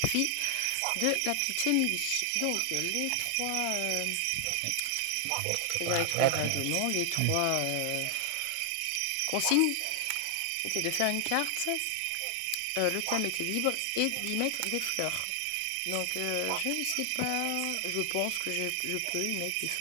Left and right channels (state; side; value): different; both; correlation 0.00